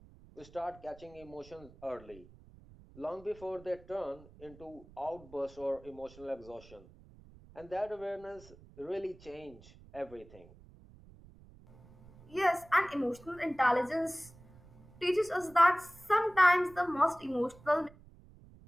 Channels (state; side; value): noise; right; rumble, 22 dB below the sound